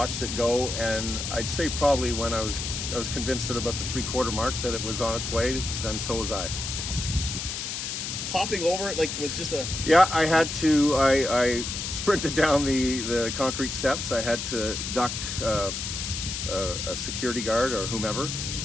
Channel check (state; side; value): noise; left; hiss, 4 dB below the sound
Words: it go, and I'd say probably when I was convinced at about the 3/4 mark that it was on its way, then so was I. Hopping over it, like, was just a... Yeah, I had to, I sprinted down the concrete steps. I had to duck a security guard or whomever,